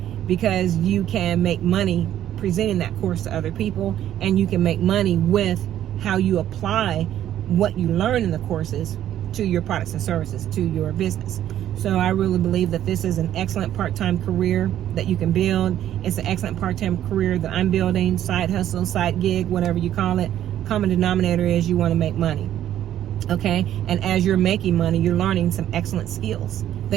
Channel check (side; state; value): left; quieter; 11.6 dB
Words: because you can make money presenting that course to other people, and you can make money with how you apply what you learn in the courses to your products and services, to your business. So I really believe that this is an excellent part-time career that you can build. It's an excellent part-time career that I'm building, side hustle, side gig, whatever you call it. Common denominator is you want to make money. Okay? And as you're making money, you're learning some excellent skills